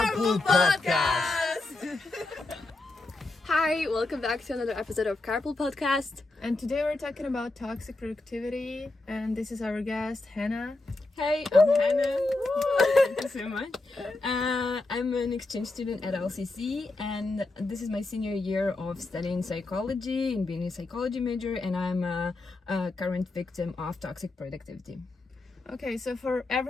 Podcast. Hi, welcome back to another episode of Carpool Podcast. And today we're talking about toxic productivity, and this is our guest, Hannah. Hey, I'm Hannah. Thank you so much. I'm an exchange student at LCC, and this is my senior year of studying psychology and being a psychology major, and I'm a current victim of toxic productivity. Okay, so for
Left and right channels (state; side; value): quieter; right; 3.1 dB